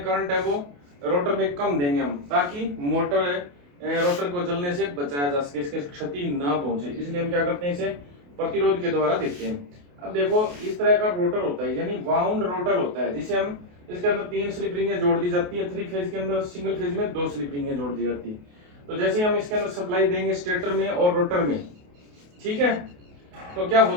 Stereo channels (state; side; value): late; left; 28 ms